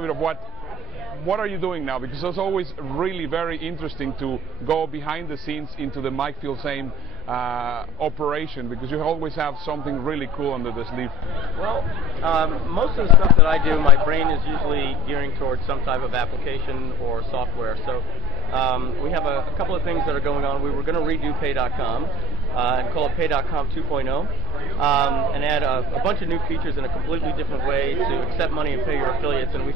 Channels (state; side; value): normal; both; correlation 0.35